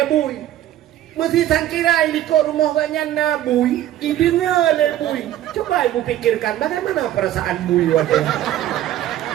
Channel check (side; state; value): left; quieter; 12.8 dB